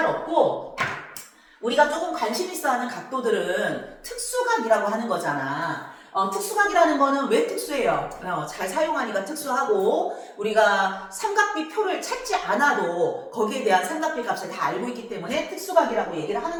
없고 우리가 조금 관심 있어 하는 각도들은 특수각이라고 하는 거잖아. 특수각이라는 거는 왜 특수해요? 잘 사용하니까 특수하고 우리가 삼각비 표를 찾지 않아도 거기에 대한 삼각비 값을 다 알고 있기 때문에 특수각이라고 얘기를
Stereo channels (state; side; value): identical; both; correlation 1.00